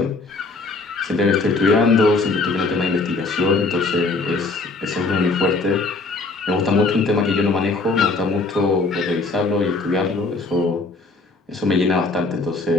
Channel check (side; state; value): right; quieter; 3.7 dB